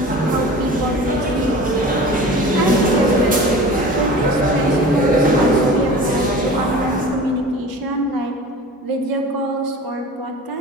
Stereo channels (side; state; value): both; normal; correlation 0.38